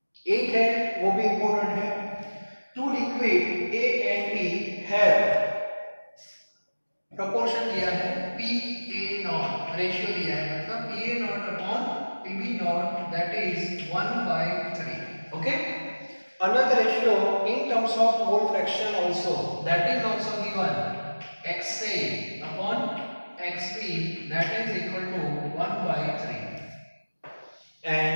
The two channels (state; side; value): inverted; both; correlation -1.00